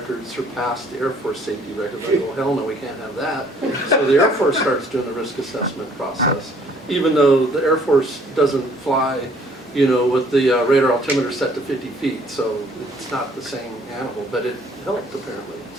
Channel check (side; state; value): both; normal; correlation 0.60